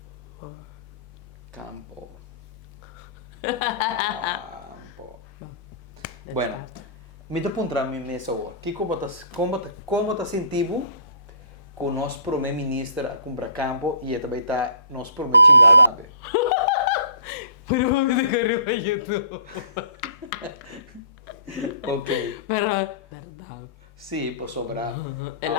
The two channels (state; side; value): inverted; both; correlation -0.50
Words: Campo. Campo. Let's Bueno, start. me te pontra mi mesa hoje. Como tá sentindo com o nosso primeiro-ministro a comprar campo e também tá nosso primeiro chingado, né? Pero vamos a correr para YouTube. Ok. Pero, verdade. Sim, por sobrar.